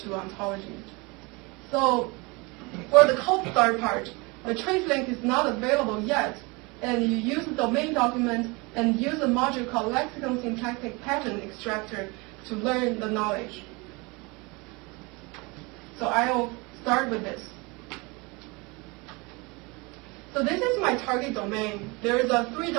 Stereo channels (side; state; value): left; quieter; 26.9 dB